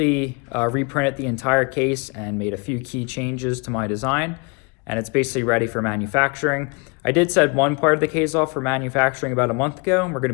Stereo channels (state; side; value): quieter; right; 31.8 dB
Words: reprinted the entire case and made a few key changes to my design, and it's basically ready for manufacturing. I did set one part of the case off for manufacturing about a month ago, and we're going to